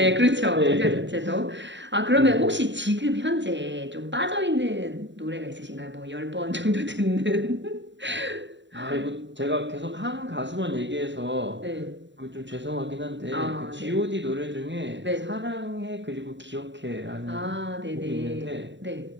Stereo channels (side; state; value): left; late; 0.53 ms